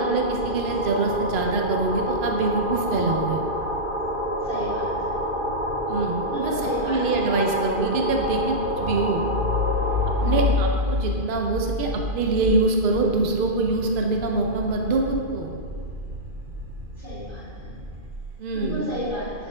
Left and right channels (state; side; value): late; left; 2.5 ms